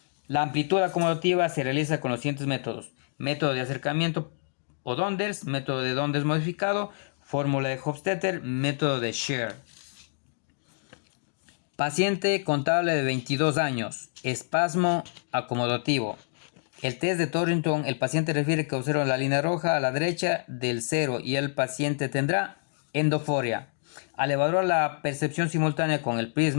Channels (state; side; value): silent; right; digital silence